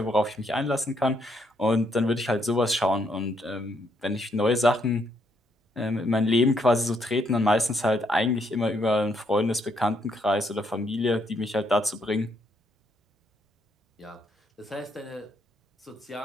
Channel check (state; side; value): normal; both; correlation 0.73